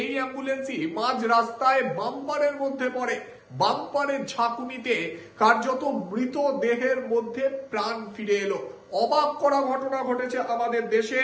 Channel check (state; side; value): identical; both; correlation 1.00